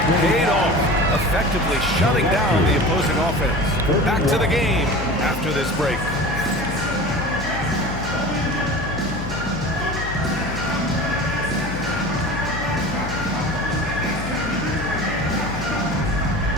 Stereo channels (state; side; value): noise; left; hum, 9 dB below the sound